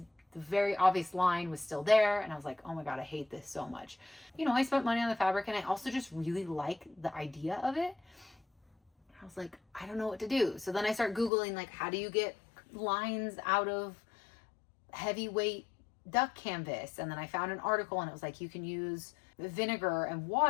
very obvious line was still there, and I was like, oh my god, I hate this so much. You know, I spent money on the fabric, and I also just really like the idea of it. I was like, I don't know what to do. So then I start Googling, like, how do you get lines out of heavyweight duck canvas? And then I found an article, and it was like, you can use vinegar and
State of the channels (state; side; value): drops out; right; at 11.3 s